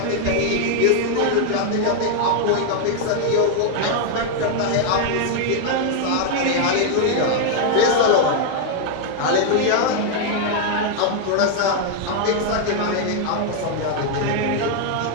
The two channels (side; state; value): both; different; correlation 0.00